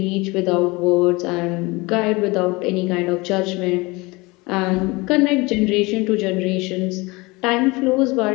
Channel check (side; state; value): right; quieter; 24.1 dB